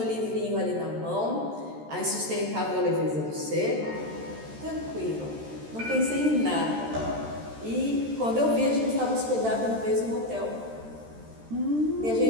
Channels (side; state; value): left; late; 13 ms